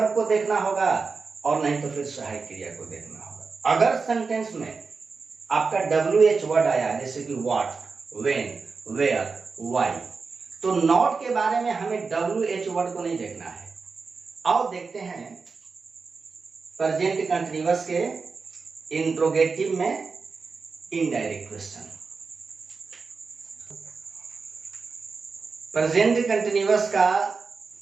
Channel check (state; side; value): quieter; left; 4.7 dB